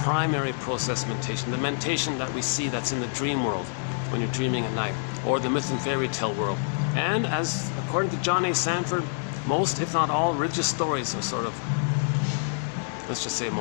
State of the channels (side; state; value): right; silent; digital silence